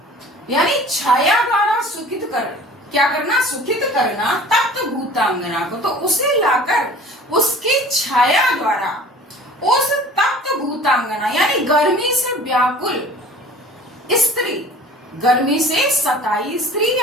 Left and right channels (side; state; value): both; normal; correlation 0.44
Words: यानी छाया द्वारा सुखित कर। क्या करना, सुखित करना तप्त भूतांगना को। तो उसे लाकर उसकी छाया द्वारा उस तप्त भूतांगना यानी गर्मी से व्याकुल स्त्री, गर्मी से सताई स्त्री